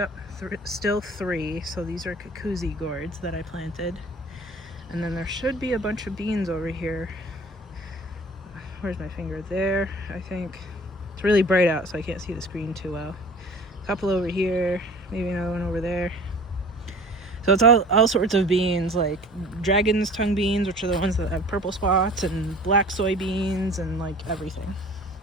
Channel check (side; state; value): both; normal; correlation 0.45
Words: still 3. So these are Kakuzi gourds that I planted. And then there should be a bunch of beans over here. Where's my finger? There, I think. It's really bright out, so I can't see the screen too well. A couple over here, maybe another one over there. So it's all sorts of beans, like dragon's tongue beans, which are the ones that have purple spots, and black soybeans, and like everything.